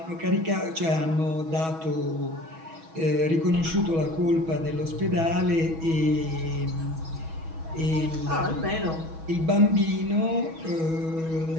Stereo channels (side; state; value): left; late; 6.2 ms